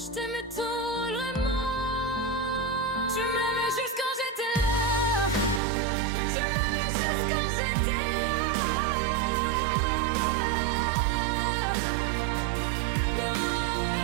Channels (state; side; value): drops out; left; at 5.6 s